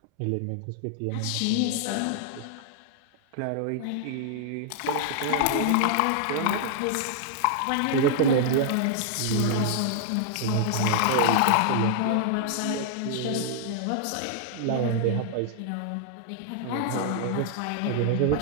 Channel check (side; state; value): both; different; correlation -0.01